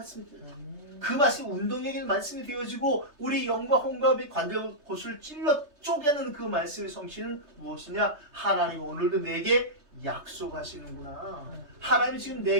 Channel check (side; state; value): left; late; 3.3 ms